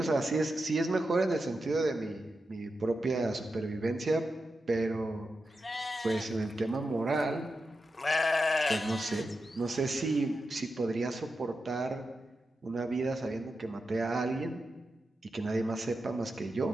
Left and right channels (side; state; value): both; normal; correlation 0.89